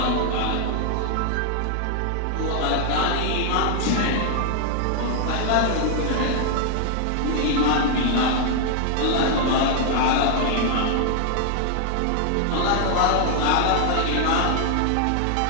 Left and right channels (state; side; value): different; both; correlation 0.00